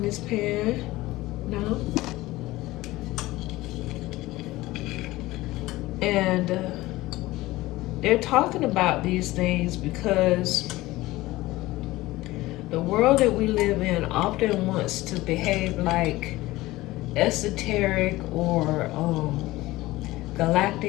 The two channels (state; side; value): quieter; right; 18.4 dB